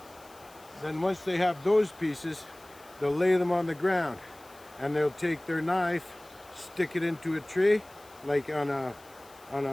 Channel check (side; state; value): left; noise; hiss, 25 dB below the sound